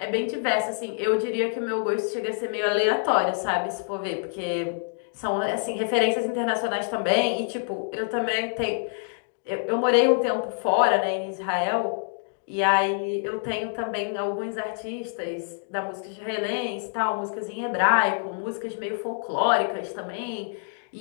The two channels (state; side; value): silent; right; digital silence